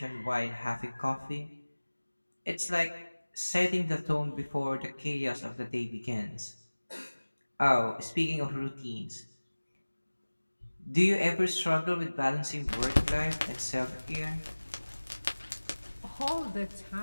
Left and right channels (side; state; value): both; inverted; correlation -1.00